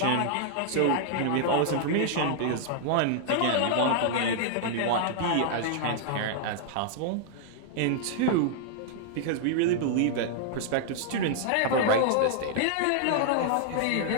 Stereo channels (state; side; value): different; both; correlation 0.00